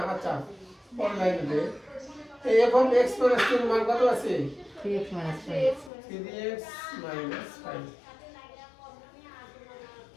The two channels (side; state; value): right; drops out; at 5.9 s